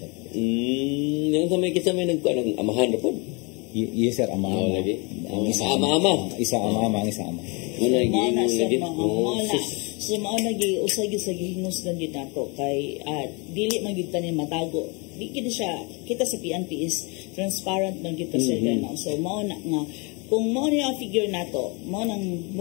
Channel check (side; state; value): right; quieter; 30.4 dB